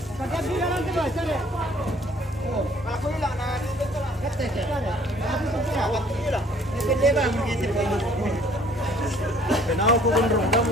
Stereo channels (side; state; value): both; normal; correlation 0.58